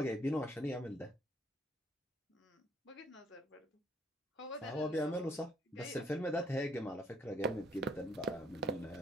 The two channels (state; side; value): normal; both; correlation 0.66